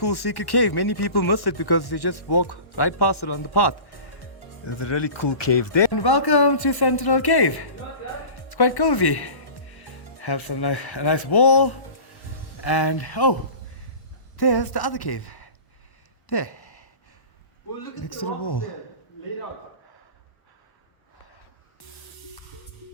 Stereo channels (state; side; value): late; right; 1.1 ms